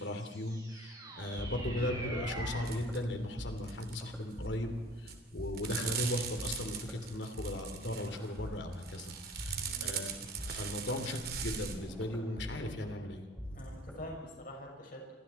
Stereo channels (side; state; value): both; normal; correlation 0.48